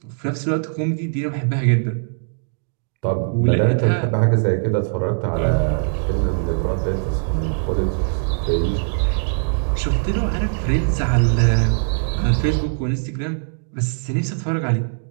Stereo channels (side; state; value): left; silent; digital silence